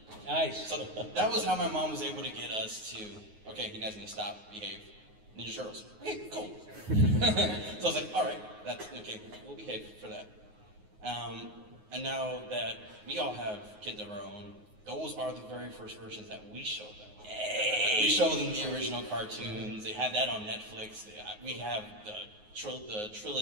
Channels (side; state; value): left; late; 9.5 ms